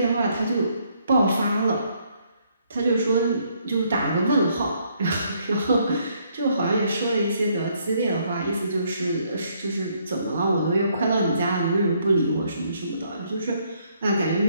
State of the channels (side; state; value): both; inverted; correlation -0.69